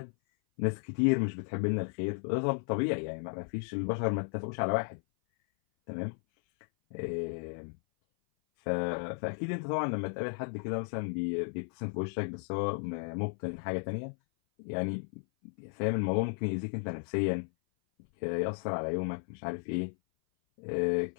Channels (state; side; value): silent; right; 55 dB below the other